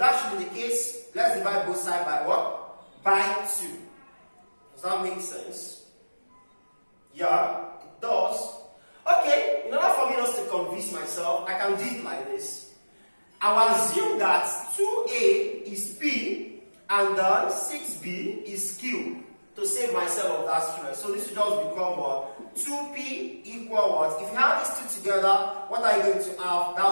should be the case, let's divide both sides by what? By 2. Does that make sense? Yeah, it does. Okay, in order for me not to convince myself, I can do it like this. I will assume that 2a is p and then 6b is q to save myself of that stress. So this will just become what? 2p equal what? If you have these two together, what are you going to have?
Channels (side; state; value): both; inverted; correlation -1.00